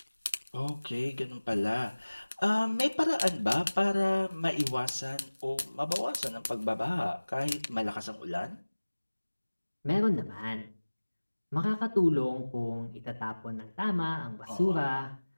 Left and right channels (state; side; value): inverted; both; correlation -1.00